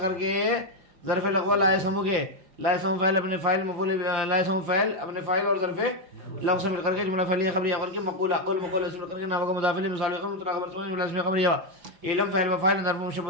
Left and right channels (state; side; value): late; left; 5.8 ms